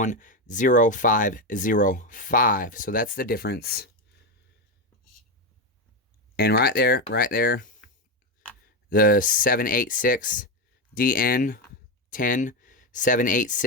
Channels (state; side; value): normal; both; correlation 0.10